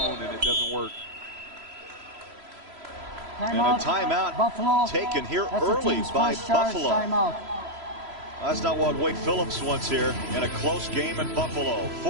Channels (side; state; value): left; late; 3.0 ms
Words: and it doesn't work. And a timeout Buffalo taken here early by Buffalo. That's not what Wade Phillips wants here in a close game in Buffalo.